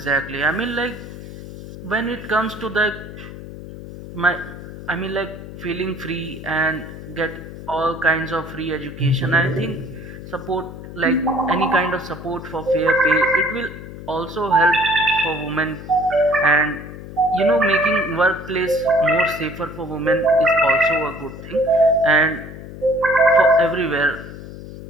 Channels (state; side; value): noise; left; hum, 13 dB below the sound